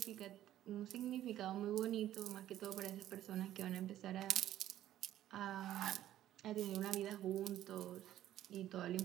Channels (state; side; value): quieter; left; 12.7 dB